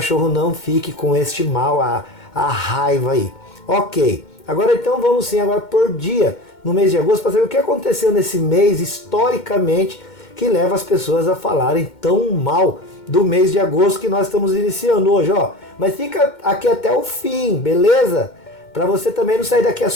não fique com este mal, a raiva aí. Ok, agora então vamos sim agora por dia no mês de agosto para saber o que aconteceu nesse mês historicamente que leva as pessoas a falarem tão mal do mês de agosto que nós estamos iniciando hoje, ó. Mas fica aqui até o fim, beleza? para você também não sair daqui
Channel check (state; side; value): late; right; 2.2 ms